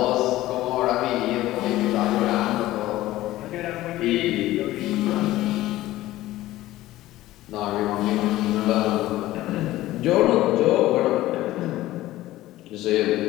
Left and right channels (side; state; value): right; quieter; 16.0 dB